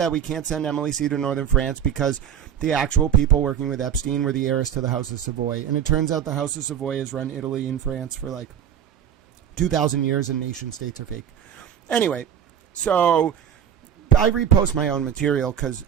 we can't send Emily C. to Northern France because the actual people working with Epstein were the heiress to the House of Savoy. And it turns out the House of Savoy has run Italy and France for, like, 2,000 years, and nation states are fake. Anyway, so I repost my own material because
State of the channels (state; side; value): quieter; left; 9.1 dB